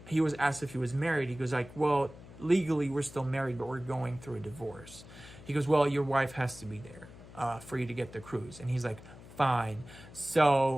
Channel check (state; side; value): noise; left; hum, 18 dB below the sound